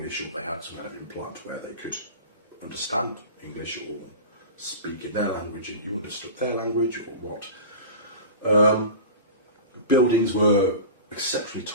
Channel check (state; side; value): inverted; both; correlation -0.32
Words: or they had some kind of implant where they could understand English or speak in their language and you understood their language or what. Buildings were exceptionally